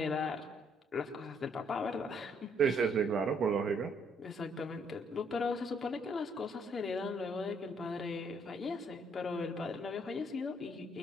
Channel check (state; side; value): normal; both; correlation 0.68